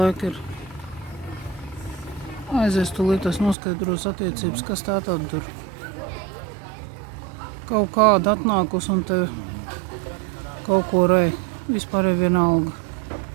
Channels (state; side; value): drops out; left; at 3.6 s